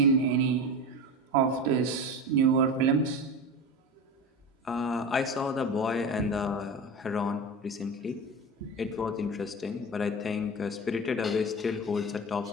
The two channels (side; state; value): both; normal; correlation 0.26